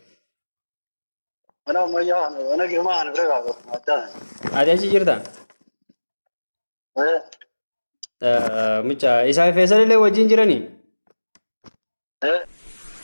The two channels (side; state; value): both; inverted; correlation -1.00